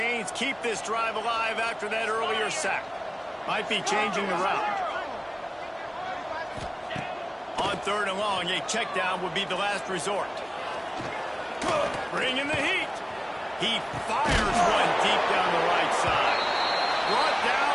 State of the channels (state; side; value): identical; both; correlation 1.00